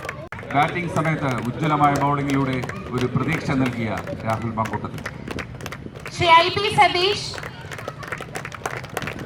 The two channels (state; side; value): identical; both; correlation 1.00